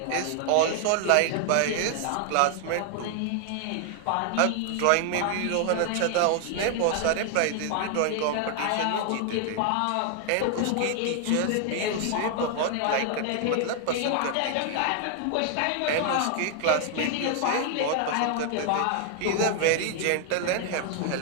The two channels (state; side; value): different; both; correlation 0.00